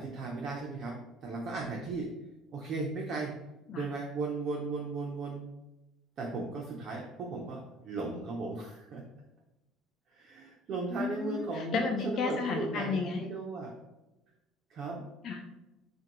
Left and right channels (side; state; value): both; normal; correlation 0.52